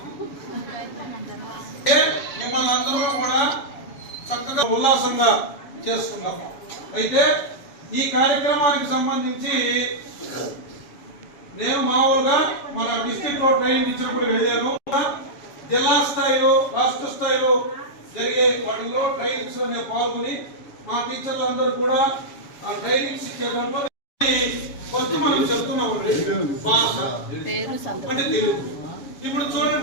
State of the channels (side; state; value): right; late; 7.1 ms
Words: మిమ్మల్ని అందరూ కూడా చక్కగా ఉల్లాసంగా చేసుకున్నాం. అయితే ఈ కార్యక్రమానికి సంబంధించి నేను మామూలుగా మన డిస్ట్రిక్ట్ లో ట్రైనింగ్ ఇచ్చినప్పుడు వెళ్ళాను. జిల్లా స్థాయిలో రాష్ట్ర స్థాయిలో జరిగే వాటిలో ట్రైనింగ్స్ లో నేను పాల్గొని మా టీచర్లు అందరూ కూడా ఆ ట్రైనింగ్స్ ఇచ్చేటప్పుడు ఫస్ట్ మనం చెప్తున్నాం భాష అంటే తెలుగు. ఇప్పుడు